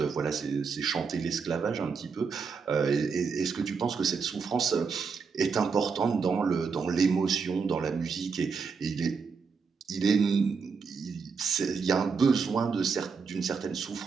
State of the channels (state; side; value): quieter; left; 5.4 dB